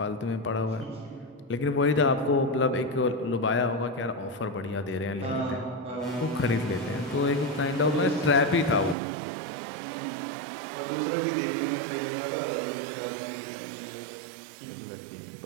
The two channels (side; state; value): left; drops out; at 9.0 s